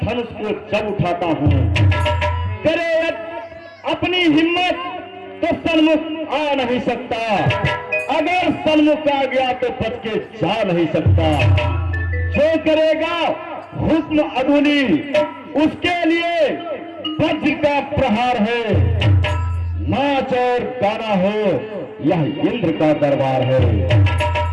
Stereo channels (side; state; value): both; identical; correlation 1.00